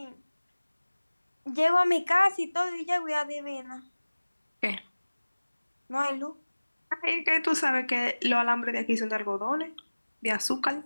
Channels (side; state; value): both; inverted; correlation -1.00